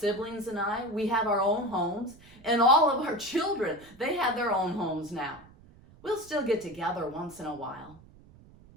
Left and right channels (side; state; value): right; noise; rumble, 24 dB below the sound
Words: and I, we have our own homes, and all of our children, they have their own homes now. We'll still get together once in a while,